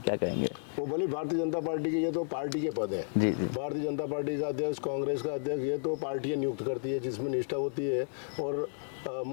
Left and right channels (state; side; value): silent; right; 56 dB below the other